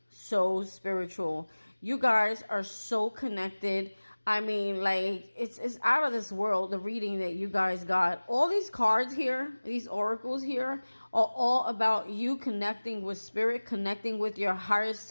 spiritual. You guys are so connected. I mean, like it's out of this world. The reading that you guys got, all these cards here, these oracles here, are all about you connecting with spirit, connecting with your higher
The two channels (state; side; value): inverted; both; correlation -1.00